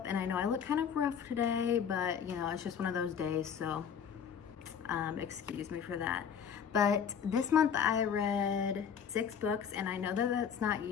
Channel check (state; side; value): quieter; right; 7.6 dB